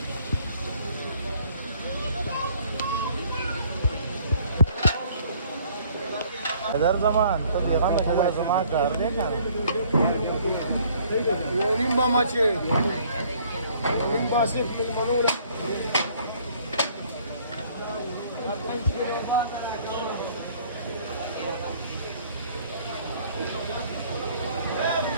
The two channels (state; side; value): inverted; both; correlation -0.59